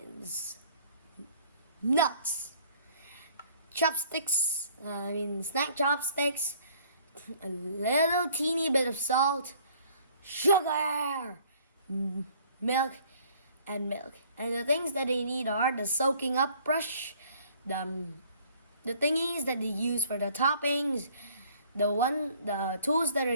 nuts, snack chopsticks, a little teeny bit of salt, sugar, milk, and milk. And the things that they need are the soaking up brush, the thingies that they use for the toppings, the tools that are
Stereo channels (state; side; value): inverted; both; correlation -0.57